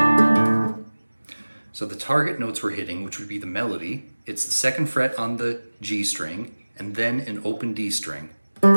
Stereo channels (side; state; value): both; inverted; correlation -1.00